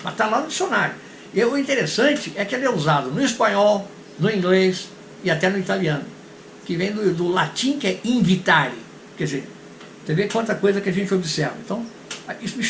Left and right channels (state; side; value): identical; both; correlation 1.00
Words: Mas está lá no dicionário. E o interessante é que ele é usado no espanhol, no inglês e até no italiano. Que vem do latim, que é invitare. Quer dizer, você vê quanta coisa que a gente observa. Então, isso me